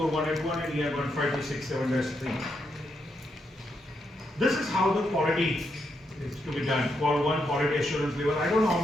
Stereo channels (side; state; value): both; normal; correlation 0.81